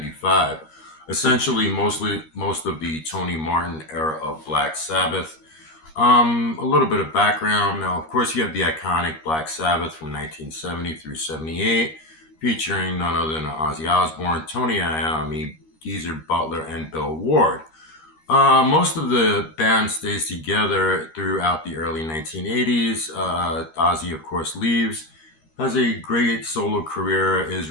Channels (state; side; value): late; right; 13 ms